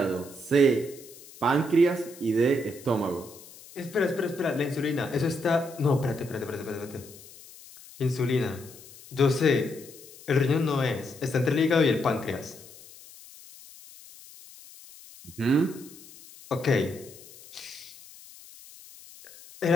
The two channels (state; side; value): noise; left; hiss, 20 dB below the sound